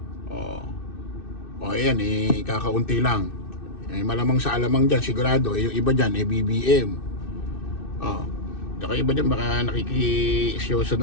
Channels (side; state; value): right; late; 2.6 ms